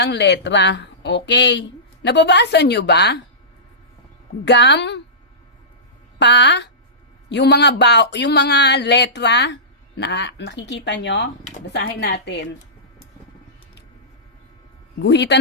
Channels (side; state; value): both; normal; correlation -0.20